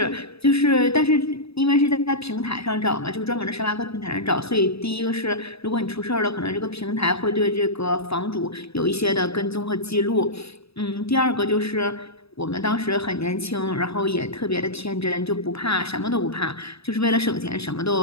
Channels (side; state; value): right; late; 0.78 ms